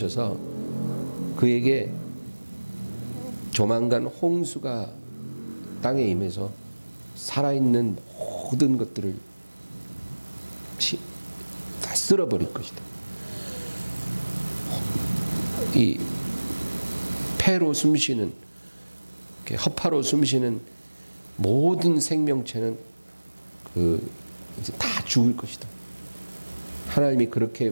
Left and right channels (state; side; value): inverted; both; correlation -1.00